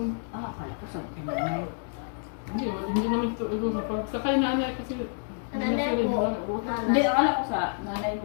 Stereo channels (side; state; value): right; silent; digital silence